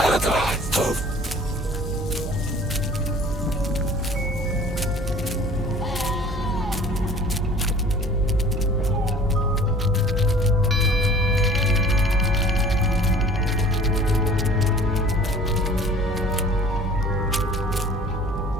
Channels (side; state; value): both; normal; correlation 0.48